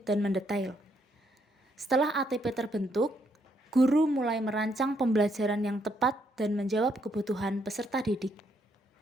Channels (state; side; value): normal; both; correlation 0.74